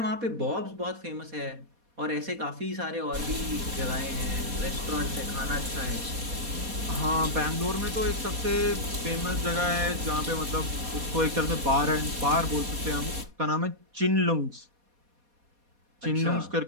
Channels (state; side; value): late; left; 4.2 ms